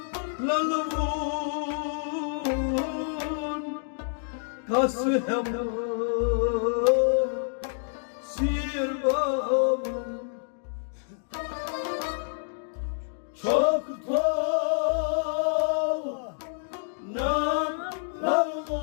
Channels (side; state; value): right; silent; digital silence